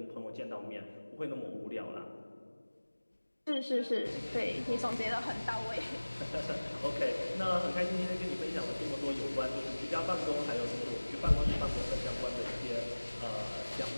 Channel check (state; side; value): inverted; both; correlation -1.00